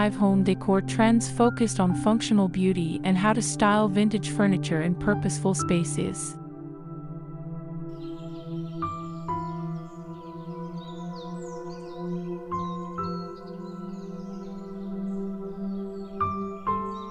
home decor trends focused on functional beauty and how to style vintage furniture in purposeful spaces.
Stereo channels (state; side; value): identical; both; correlation 1.00